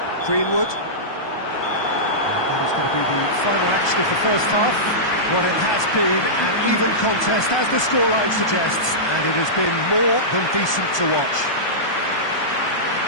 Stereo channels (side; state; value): right; late; 1.2 ms